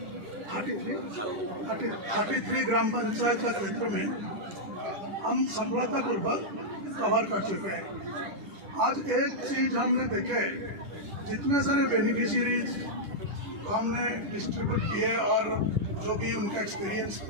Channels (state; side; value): late; left; 10 ms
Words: 33 ग्राम पंचायत का क्षेत्र में हम सफलतापूर्वक कवर कर चुके हैं। आज एक चीज हमने देखे, जितने सारे बेनिफिशियरीज हमने डिस्ट्रीब्यूट किए और जो भी उनका एक्सपीरियंस